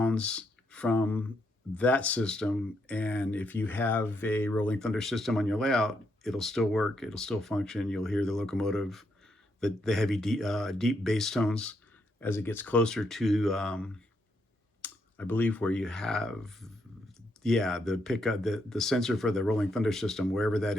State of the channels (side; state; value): both; normal; correlation 0.78